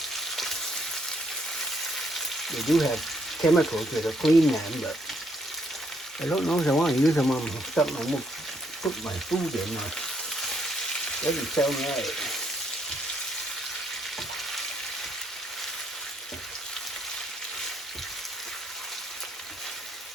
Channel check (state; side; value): normal; both; correlation 0.72